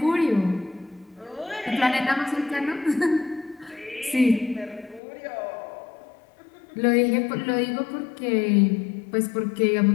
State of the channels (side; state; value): right; drops out; at 5.0 s